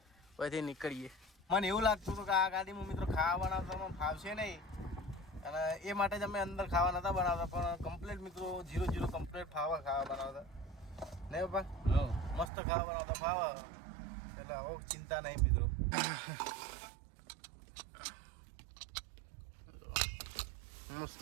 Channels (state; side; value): drops out; left; at 12.5 s